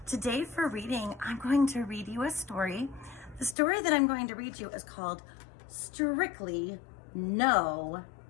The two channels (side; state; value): right; drops out; at 3.6 s